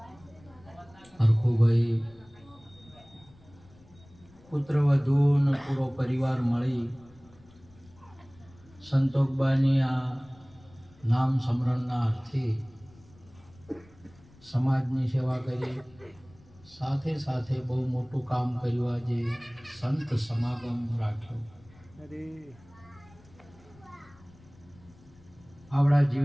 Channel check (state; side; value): noise; left; rumble, 26 dB below the sound